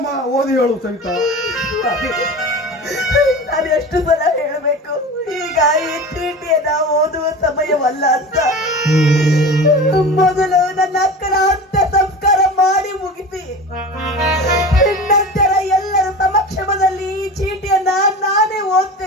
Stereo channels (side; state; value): both; normal; correlation 0.32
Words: ಓದಿ ಹೇಳು ಸವಿತಾ. ನಾನು ಎಷ್ಟು ಸಲ ಹೇಳಬೇಕು, ಈಗ ಈ ಚೀಟಿಯನ್ನ ಓದುವ ಸಮಯವಲ್ಲ ಅಂತ. ಮೊದಲು ನನ್ನ ಅಕ್ಕನ ಅಂತ್ಯ ಸಂಸ್ಕಾರ ಮಾಡಿ ಮುಗಿಸಿ ನಂತರ ಎಲ್ಲರ ಸಮಕ್ಷಮದಲ್ಲಿ ಈ ಚೀಟಿಯನ್ನ ನಾನೇ